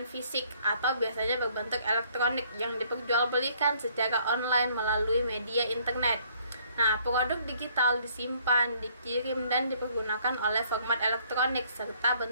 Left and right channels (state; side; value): inverted; both; correlation -0.63